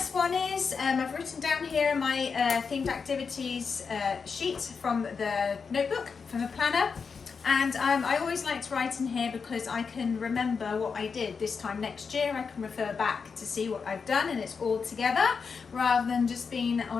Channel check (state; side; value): quieter; right; 5.5 dB